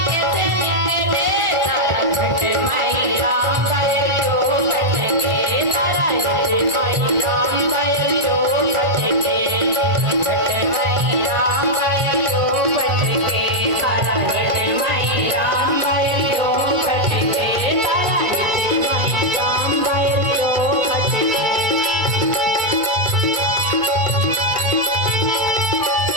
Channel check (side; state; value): left; late; 1.4 ms